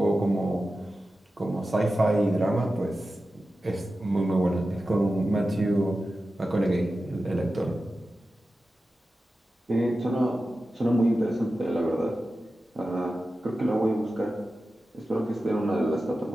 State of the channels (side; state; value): both; normal; correlation 0.93